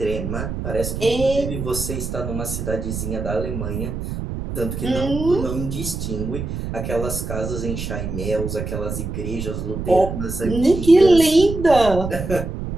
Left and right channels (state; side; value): noise; right; rumble, 5 dB below the sound